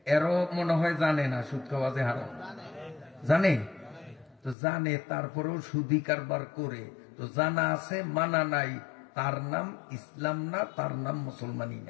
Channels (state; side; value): drops out; right; at 4.5 s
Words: এরও মনে হয় জানে না সুদ খাওয়া যে হারাম। জানে তো, জানে তারপরেও সুদি কারবার করে। তো জানা আছে মানা নাই, তার নাম ইসলাম না, তার নাম মুসলমানি